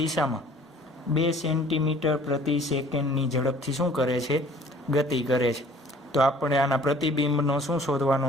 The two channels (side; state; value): both; normal; correlation 0.53